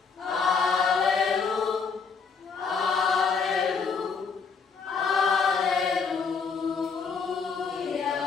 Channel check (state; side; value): quieter; right; 5.4 dB